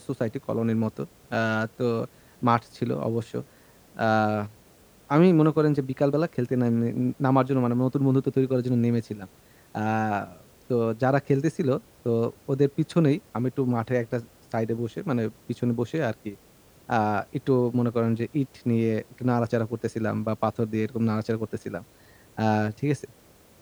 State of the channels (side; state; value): both; identical; correlation 1.00